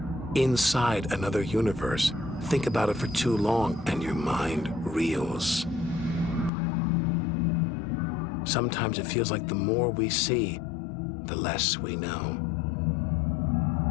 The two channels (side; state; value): right; drops out; at 6.5 s